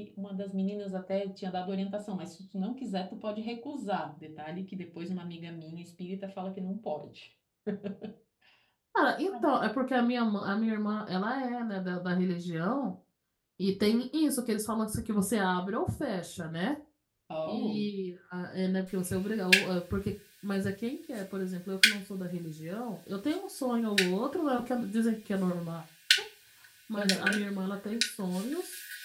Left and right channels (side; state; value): both; identical; correlation 1.00